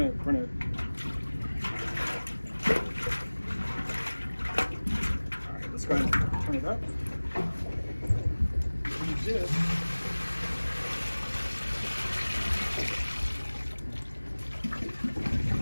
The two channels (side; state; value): both; inverted; correlation -1.00